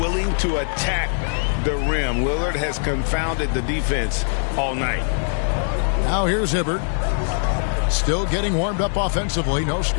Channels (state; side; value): silent; right; 64 dB below the other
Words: to attack the rim. Lillard has confounded the defense all night. Now here's Hibbert. Still getting warmed up offensively. No